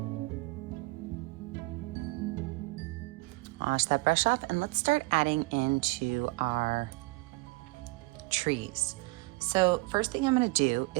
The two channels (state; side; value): quieter; left; 25.1 dB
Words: Wash that brush off, and let's start adding into our trees. So first thing I'm going to do